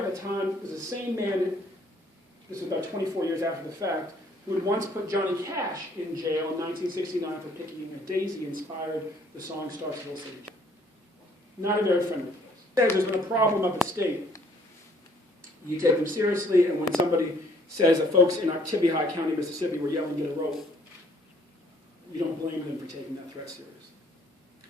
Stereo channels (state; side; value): normal; both; correlation 0.61